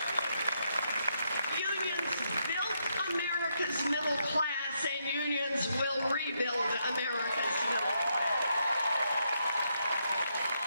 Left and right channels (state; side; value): inverted; both; correlation -0.78